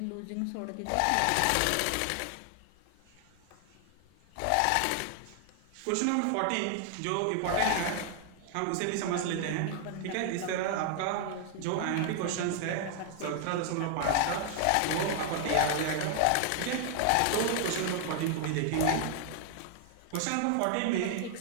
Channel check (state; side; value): different; both; correlation 0.00